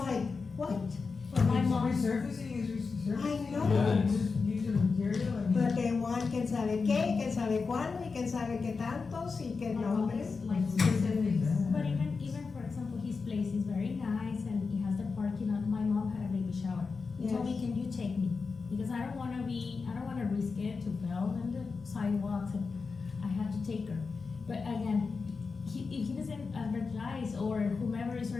like, what? my mom, Resurfacing is resurfacing. I know. Yeah. Just use the material, I mean. But they want quién sabe qué, quién sabe cuándo, y quién sabe qué tantos, y qué nombres. Like specifics. but even for example, his place is very nice and he has the parking lot. My mom had a baby shower. He told me, Yes. can you take me? Because I don't wanna risk it to fall on the sidewalks, and I have to take her. But again, if he doesn't advertise, or whomever is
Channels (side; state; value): right; quieter; 4.7 dB